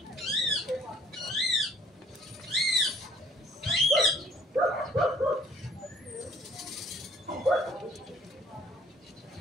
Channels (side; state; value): both; normal; correlation 0.58